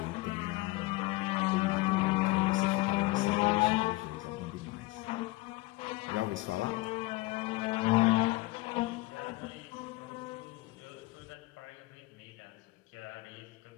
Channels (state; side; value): quieter; right; 20.5 dB